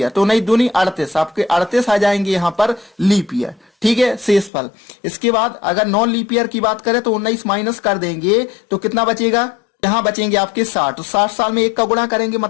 तो 19 दूनी 38, आपके 38 आ जाएंगे यहां पर लीप ईयर। ठीक है, शेषफल। इसके बाद अगर नॉन लीप ईयर की बात करें तो 19 माइनस कर देंगे तो कितना बचेगा, यहां बचेंगे आपके 60। तो 60 साल में 1 का गुणा करेंगे,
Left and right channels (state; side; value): drops out; right; at 4.5 s